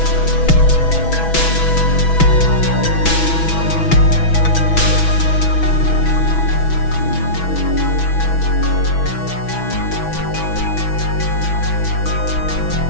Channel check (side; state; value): right; late; 6.1 ms